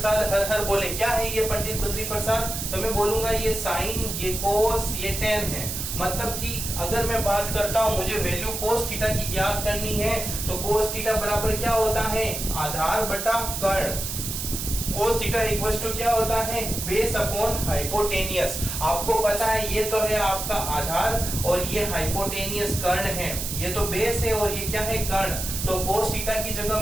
हर हर बोले, क्या है ये पंडित बद्री प्रसाद? तो मैं बोलूंगा ये साइन, ये कोस, ये टेन है। मतलब कि अगर मैं बात करता हूं मुझे वैल्यू कोस थीटा की ज्ञात करनी है, तो कोस थीटा बराबर क्या होता है? आधार बटा कर्ण। कोस थीटा इक्वल्स टू क्या होता है? Base upon hypotenuse. आपको पता है ये तो है आपका आधार और ये हाइपोटेनियस कर्ण है, ये तो बेस है और ये क्या है? कर्ण। तो कोस थीटा की जगह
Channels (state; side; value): noise; right; hiss, 5 dB below the sound